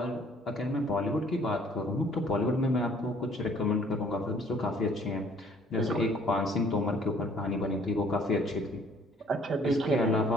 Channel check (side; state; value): both; normal; correlation 0.59